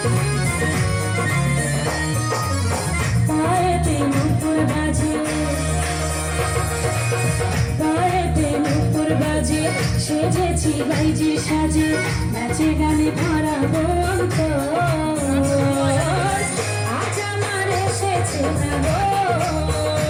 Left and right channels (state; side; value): identical; both; correlation 1.00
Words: সেজেছি বাইজি সাজে, নাচে গানে ভরাবো অন্তর। আজ আমার এসেছে না গো,